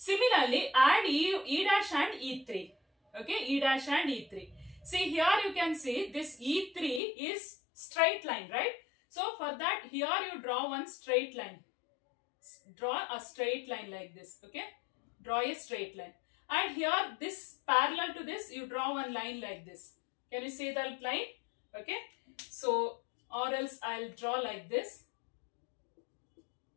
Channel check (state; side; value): drops out; right; at 7.0 s